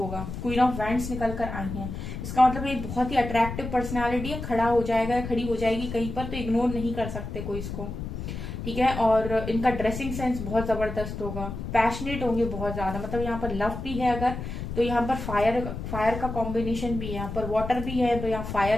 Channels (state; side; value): noise; left; rumble, 7 dB below the sound